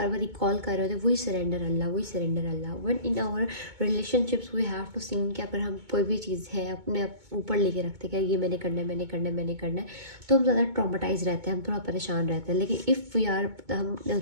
بار ریکال کر رہے ہوتے ہیں, وہی سرنڈر اللہ, وہی surrender Allah. One in our relationships we have to sing کہ اگر ہم کوئی بھی چیز ہے اپنے اوپر لے کے رکھتے کہ یہ میں نے کرنا ہے, میں نے کرنا ہے, میں نے کرنا ہے, تو ہم زیادہ ٹرامیٹائز رہتے ہیں, ہم تھوڑا پریشان رہتے ہیں. لیکن اف وی آر, ہم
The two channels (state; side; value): late; left; 2.2 ms